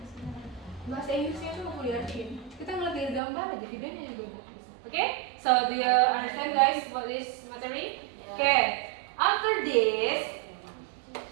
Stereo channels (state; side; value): drops out; left; at 3.2 s